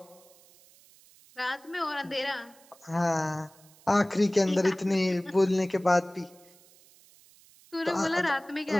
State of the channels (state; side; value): noise; right; hiss, 27 dB below the sound